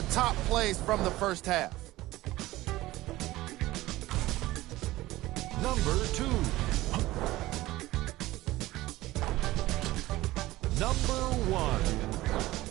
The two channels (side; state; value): left; quieter; 17.5 dB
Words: top plays from the first half. Number 2. Number 1.